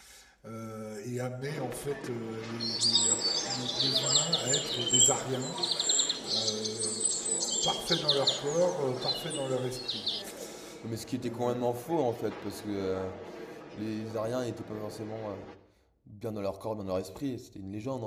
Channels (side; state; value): both; identical; correlation 1.00